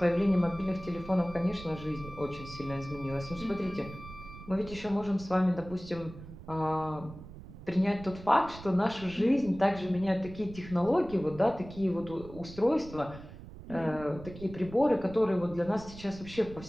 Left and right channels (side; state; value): right; noise; rumble, 15 dB below the sound